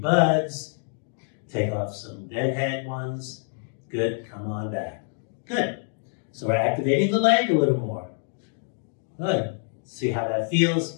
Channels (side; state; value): right; silent; 61 dB below the other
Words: take off some deadhead ones. Good, come on back. Good. So we're activating the leg a little more. Good. See how that